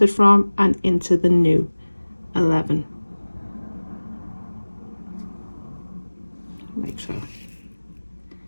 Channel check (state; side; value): inverted; both; correlation -1.00